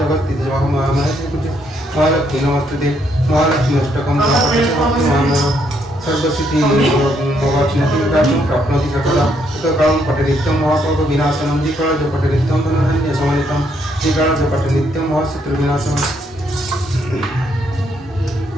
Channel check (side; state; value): both; normal; correlation 0.73